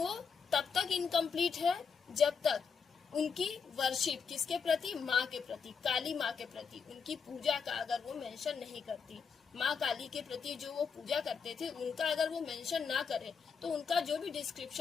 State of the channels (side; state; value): right; quieter; 5.9 dB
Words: तब तक इनकम्प्लीट है जब तक उनकी वर्शिप किसके प्रति? माँ के प्रति, काली माँ के प्रति, उनकी पूजा का अगर वो मेंशन नहीं करती, माँ काली के प्रति जो वो पूजा करते थे उनका अगर वो मेंशन ना करे तो उनका जो भी